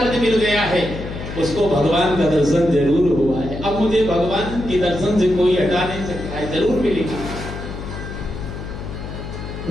मिल गया है उसको भगवान का दर्शन जरूर हुआ है। अब मुझे भगवान के दर्शन से कोई हटा नहीं सकता है, जरूर मिलेगा।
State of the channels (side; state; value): left; noise; hum, 9 dB below the sound